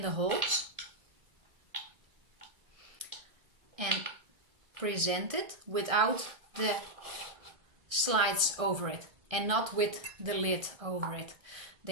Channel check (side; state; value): left; late; 1.6 ms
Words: holes and present it without the slides over it and not with the lid over it.